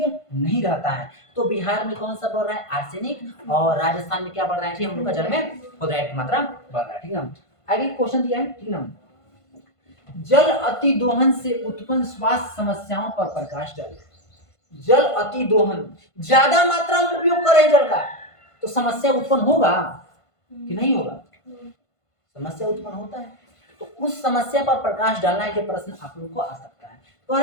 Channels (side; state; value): right; late; 1.5 ms